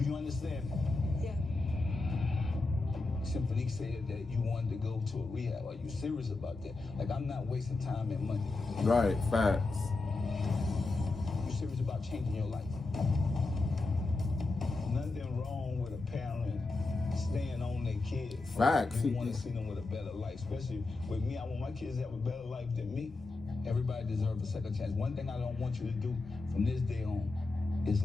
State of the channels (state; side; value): quieter; right; 3.4 dB